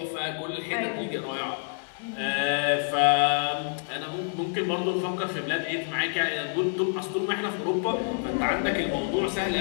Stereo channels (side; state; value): right; silent; 59 dB below the other